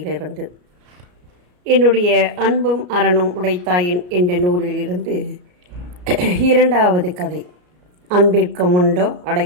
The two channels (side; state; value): left; late; 33 ms